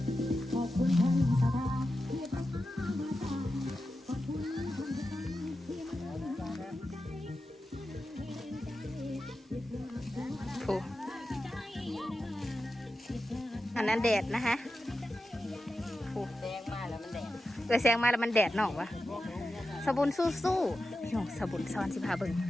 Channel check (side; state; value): both; normal; correlation 0.91